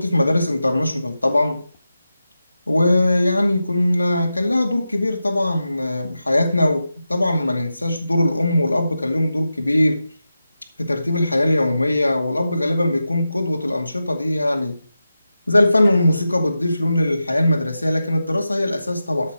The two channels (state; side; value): inverted; both; correlation -0.91